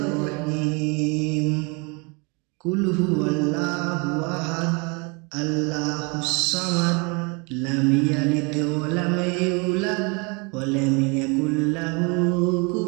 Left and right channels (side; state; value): left; quieter; 30.7 dB